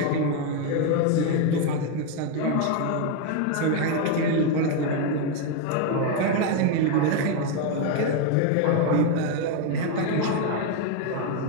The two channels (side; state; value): both; different; correlation 0.02